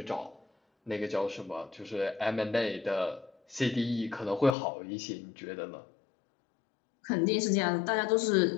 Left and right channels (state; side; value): drops out; right; at 4.5 s